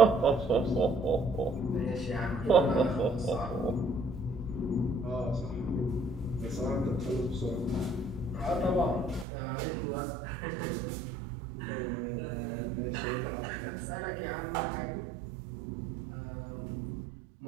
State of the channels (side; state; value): left; drops out; at 9.2 s